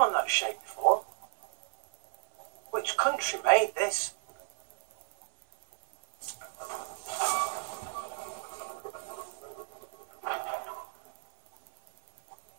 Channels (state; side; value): silent; left; 56 dB below the other